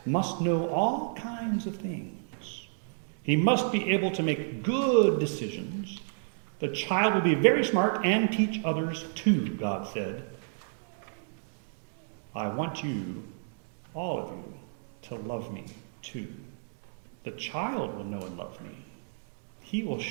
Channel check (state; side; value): silent; left; digital silence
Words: must know all kinds of things. He must be able to make good decisions. The child will be very smart and teach others too, God said. I want you, all of you, to love me too. The child will know and love me. He will